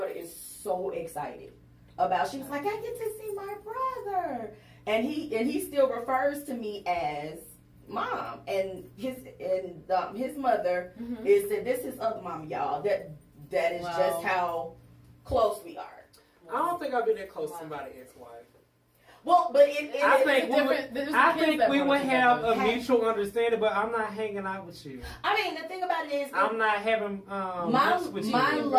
is so excited about. She was like, I get to see my brother, and he still refers to me as mom, and his mother is said this is other mom, y'all. That is just how close we are. I don't think I've been that close to somebody's ex-wife. Well, but I think we would have a mutual understanding, but I'm not hanging out with you. I mean, the thing about it is, I'm not having my love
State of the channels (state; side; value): identical; both; correlation 1.00